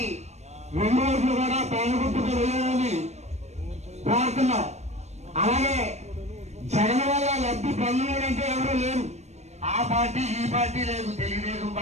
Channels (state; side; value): late; left; 0.32 ms